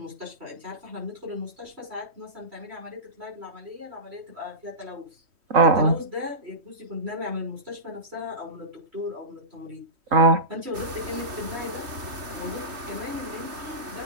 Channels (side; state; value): left; late; 3.3 ms